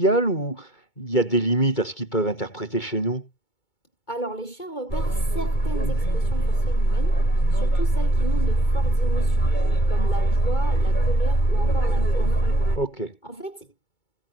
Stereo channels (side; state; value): right; late; 2.2 ms